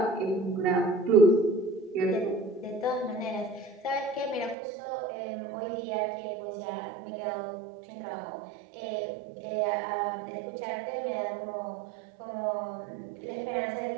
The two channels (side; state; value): left; drops out; at 4.5 s